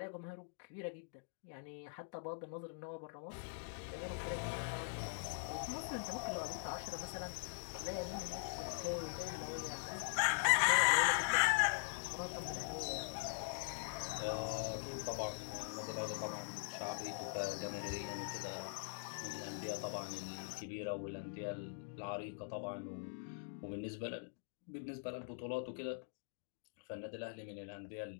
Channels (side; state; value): right; silent; digital silence